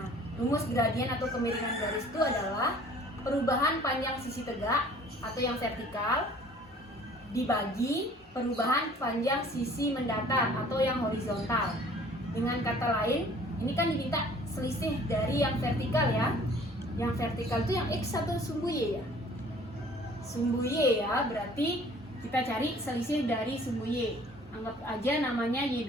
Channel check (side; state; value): both; normal; correlation 0.52